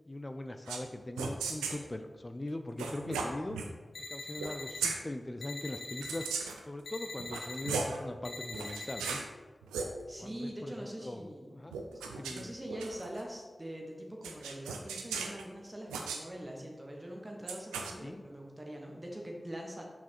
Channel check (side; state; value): both; normal; correlation 0.84